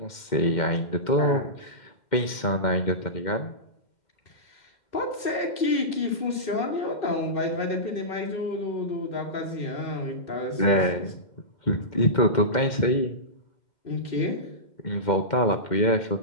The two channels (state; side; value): late; right; 2.1 ms